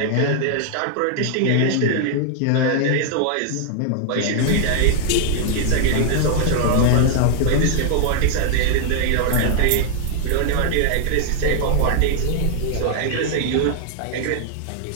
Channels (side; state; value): both; different; correlation -0.01